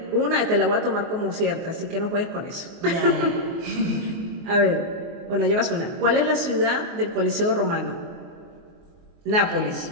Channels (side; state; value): left; late; 24 ms